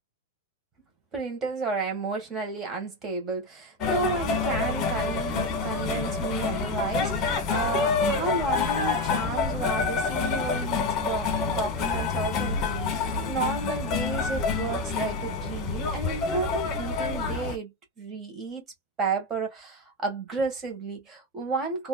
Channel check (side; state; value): both; normal; correlation 0.13